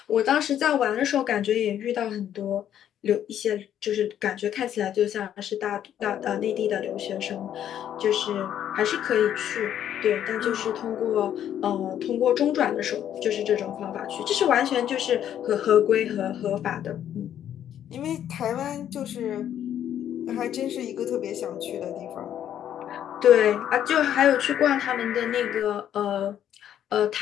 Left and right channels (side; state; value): right; quieter; 10.3 dB